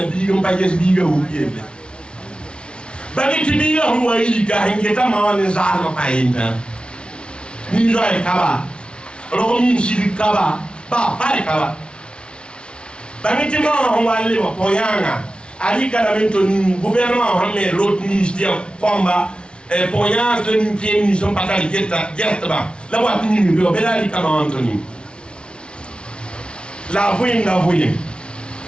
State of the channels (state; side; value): late; right; 0.057 ms